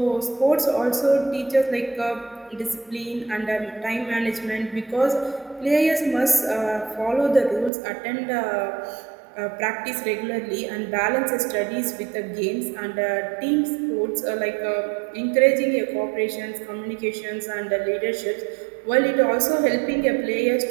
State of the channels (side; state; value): left; drops out; at 7.7 s